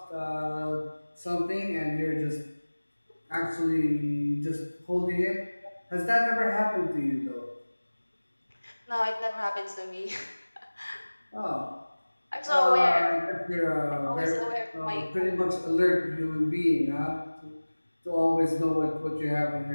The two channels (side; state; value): both; inverted; correlation -1.00